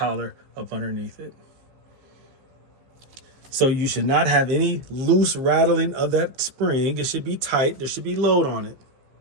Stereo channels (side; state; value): left; late; 15 ms